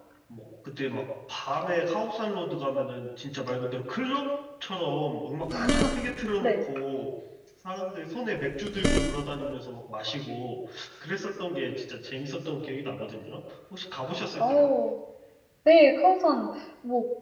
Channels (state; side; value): identical; both; correlation 1.00